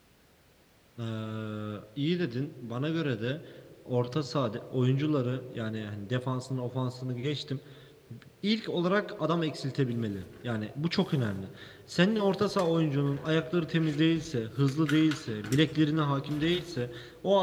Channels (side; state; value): both; identical; correlation 1.00